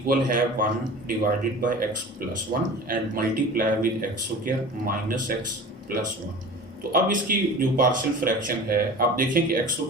है 1 divided by x plus 1 and multiply with x square minus x plus 1। तो अब इसकी जो partial fraction है, आप देखें कि x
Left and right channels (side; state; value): both; normal; correlation 0.38